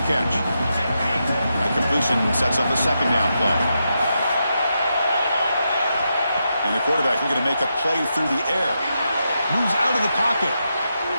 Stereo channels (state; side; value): inverted; both; correlation -0.85